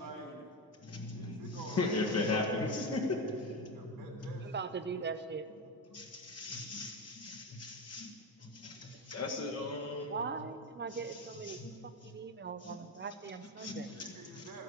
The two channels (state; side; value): normal; both; correlation 0.17